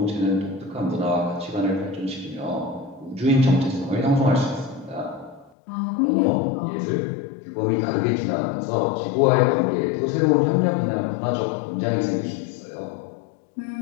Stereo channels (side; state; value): right; drops out; at 5.5 s